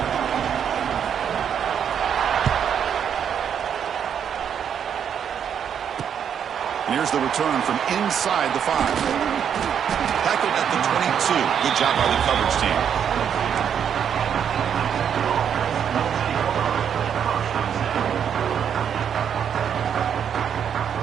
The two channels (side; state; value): left; quieter; 8.2 dB